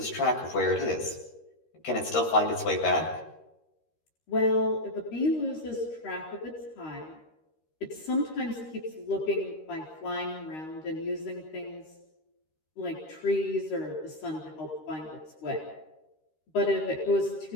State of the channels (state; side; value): late; right; 13 ms